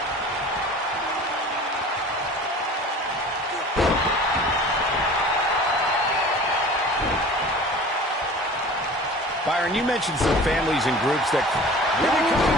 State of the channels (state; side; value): normal; both; correlation 0.42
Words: Byron, you mentioned some families and groups that really